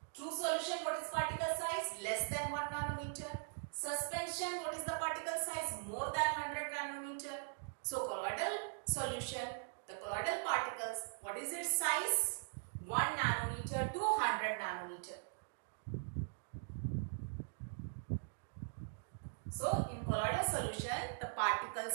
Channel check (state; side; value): silent; left; digital silence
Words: True solution, what is particle size? Less than 1 nanometer. Suspension, what is the particle size? More than 100 nanometer. So colloidal solution, the colloidal particles, what is its size? 1 nanometer to 100 nanometer. So in colloidal solution, the particle